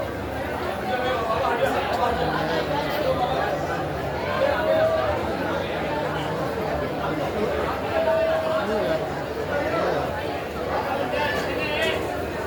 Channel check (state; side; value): identical; both; correlation 1.00